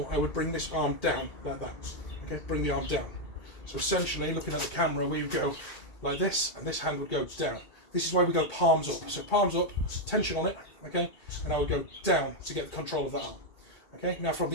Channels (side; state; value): right; late; 1.8 ms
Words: I would bring this arm down, like that. Okay, bring the arm down. So essentially, looking at the camera, we would go like this, and this hand would go down. This is why we go palms up. So palms up, tension on it, okay, and I would go down to get the control of that arm. Okay, now from